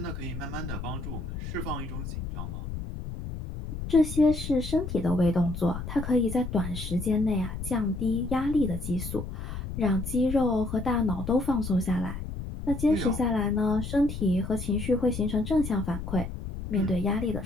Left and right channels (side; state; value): left; noise; rumble, 7 dB below the sound